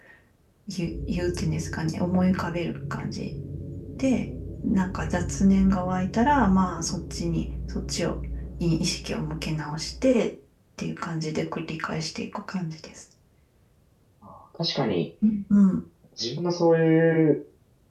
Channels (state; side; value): identical; both; correlation 1.00